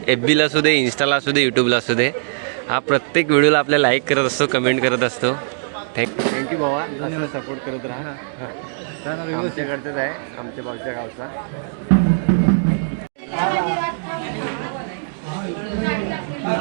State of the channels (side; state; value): left; silent; digital silence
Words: FB ला असू दे, इंस्टाला असू दे, यूट्यूबला असू दे, हा प्रत्येक व्हिडिओला आपल्या लाईक करत असतो, कमेंट करत असतो. थँक्यू भावा, असं सपोर्ट करत राहा. आमच्याकडचंच आहे, आमच्या भाऊच्या गावचा.